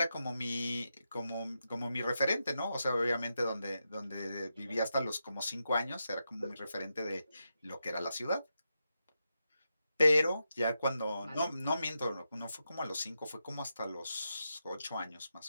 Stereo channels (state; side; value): inverted; both; correlation -0.87